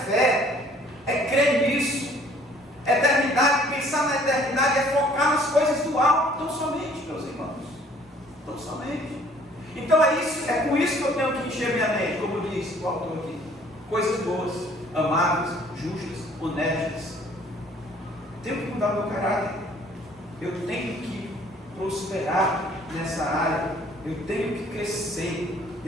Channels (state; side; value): normal; both; correlation 0.57